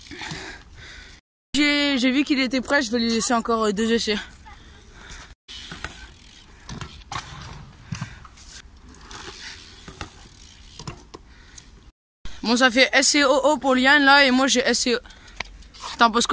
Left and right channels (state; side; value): identical; both; correlation 1.00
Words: j'ai vu qu'il était prêt, je vais lui laisser encore 2 essais. Bon, ça fait SCOO pour Yann là, et moi j'ai SCO. T'en penses